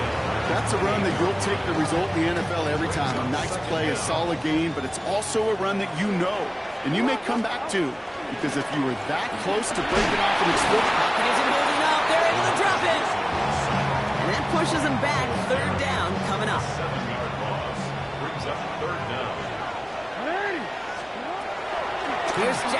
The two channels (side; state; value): both; identical; correlation 1.00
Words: That's a run that you'll take the result in the NFL every time. A nice play, a solid game, but it's also a run that you know and you may come back to, because if you were that close to breaking off an explosive... Pocket isn't holding up. They're able to drop it. And that pushes them back. 3rd down coming up. 7-yard loss brings up 3rd down. Here's